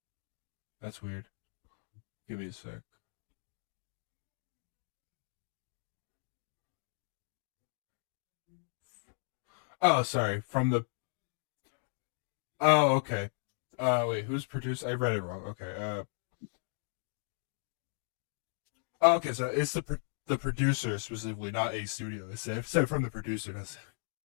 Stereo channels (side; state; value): right; silent; digital silence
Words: That's weird. Give me a sec. Oh, sorry. From the. Oh, okay. Wait. Who's produced? I read it wrong. Okay. Okay. So it's the producer specifically, not a studio. It said from the producer. That's.